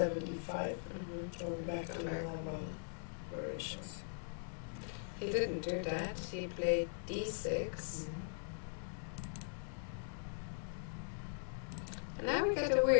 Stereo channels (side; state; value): right; silent; digital silence